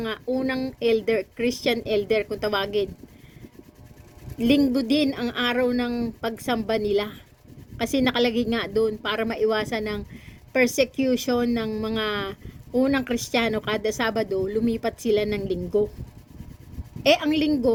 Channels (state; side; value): identical; both; correlation 1.00